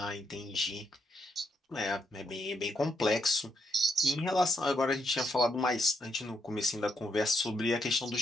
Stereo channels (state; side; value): normal; both; correlation 0.77